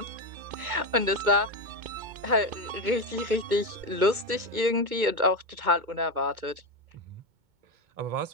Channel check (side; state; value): left; late; 2.2 ms